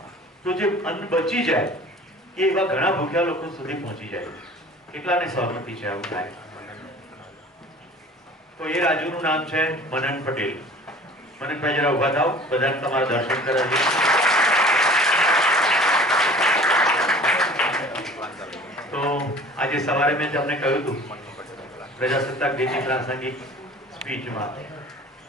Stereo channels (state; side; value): normal; both; correlation 0.45